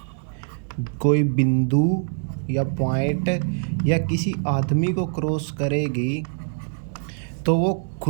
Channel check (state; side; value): silent; left; 63 dB below the other